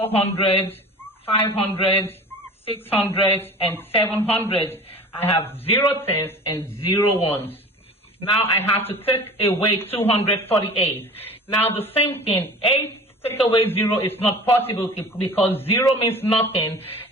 500, 600, and 700. I have 0 tens and 0 ones. Now I have to take away 248. Now the same thing, 8 take away 0 is not possible because 0 means nothing,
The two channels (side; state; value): both; normal; correlation 0.39